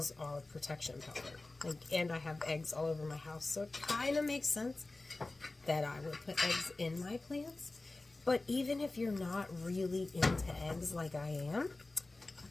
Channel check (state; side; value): quieter; right; 3.1 dB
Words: are protection powder. And I have eggs all over my house, so it kind of makes sense that I would put eggs in my plants. But even if you're not really into eggs like I am,